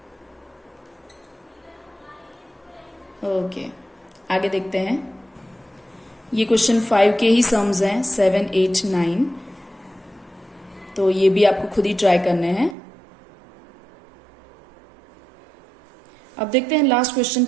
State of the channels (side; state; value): left; drops out; at 12.8 s